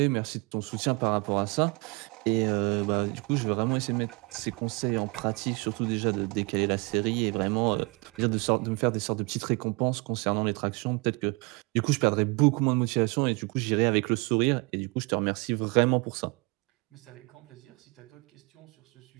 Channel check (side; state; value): left; quieter; 29.2 dB